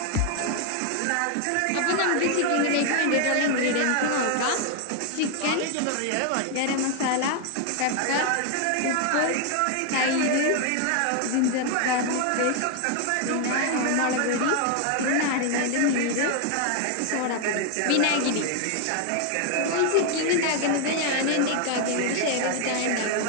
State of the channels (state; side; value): different; both; correlation 0.01